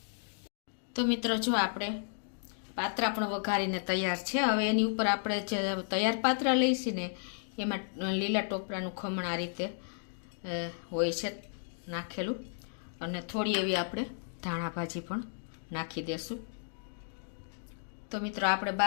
તો મિત્રો જો આપણે પાત્રા પણ વઘારીને તૈયાર છે. હવે એની ઉપર આપણે જે તૈયાર પાત્રા લઈશું ને એમાં લીલા ટોપરાનું ખમણ આ રીતે હોય છે નાખેલું અને થોડી એવી આપણે ધાણા ભાજી પણ નાખી દેશું. તો મિત્રો આપણે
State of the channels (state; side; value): silent; right; digital silence